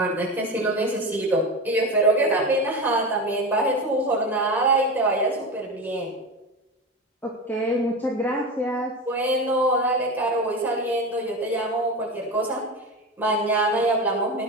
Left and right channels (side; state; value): both; normal; correlation 0.23